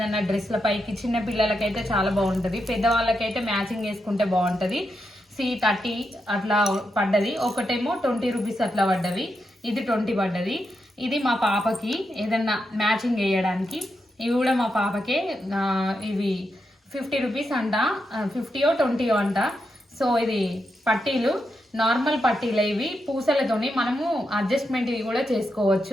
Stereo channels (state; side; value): normal; both; correlation 0.85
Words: డ్రెస్ల పైకి చిన్న పిల్లలకైతే చాలా బాగుంటుంది, పెద్దవాళ్ళకైతే మ్యాచింగ్ వేసుకుంటే బాగుంటుంది. 30 అట్లా పడ్డది. ఒకటేమో 20 రూపీస్ అట్లా పడ్డవి. ఇది 20 పడ్డది. ఇది మా పాపకి ఏదన్నా మ్యాచింగ్ వేయడానికి. ఇవి కూడా మా పాపకే. ఇవి 50 రూపీస్ అంట, 50 20 అంట. సో ఇది పట్టీలు, నార్మల్ పట్టీలు. ఇవి పూసలతోని మనము అడ్జస్ట్మెంట్ ఇవి కూడా